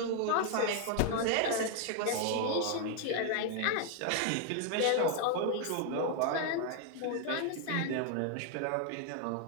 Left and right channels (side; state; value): both; different; correlation 0.00